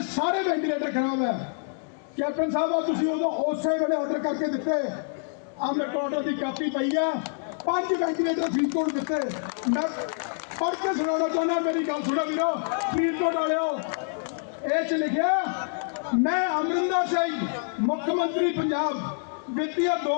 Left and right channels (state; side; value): silent; right; digital silence